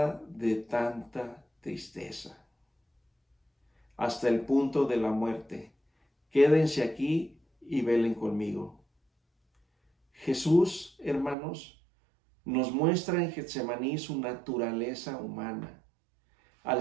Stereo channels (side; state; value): left; drops out; at 11.4 s